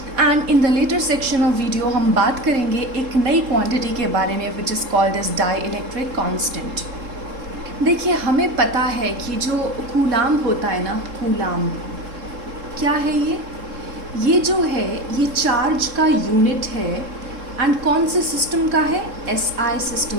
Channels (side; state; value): left; late; 3.7 ms